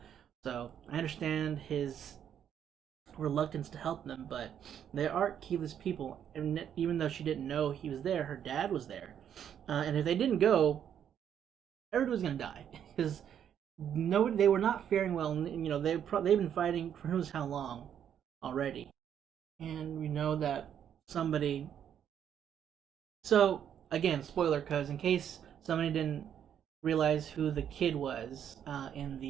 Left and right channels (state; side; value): quieter; left; 9.1 dB